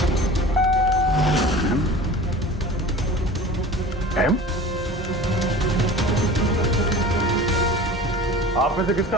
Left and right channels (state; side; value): normal; both; correlation 0.39